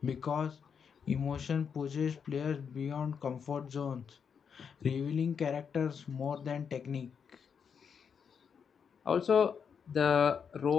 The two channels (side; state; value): right; quieter; 6.8 dB